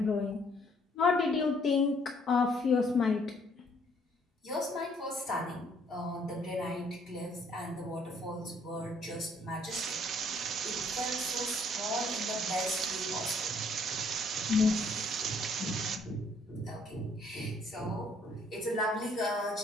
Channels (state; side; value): normal; both; correlation 0.64